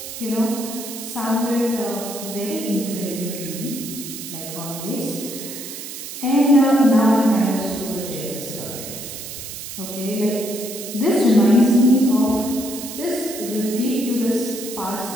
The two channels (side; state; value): right; noise; hiss, 10 dB below the sound